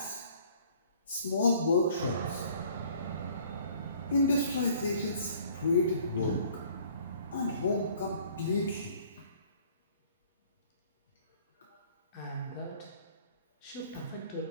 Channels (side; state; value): both; inverted; correlation -0.55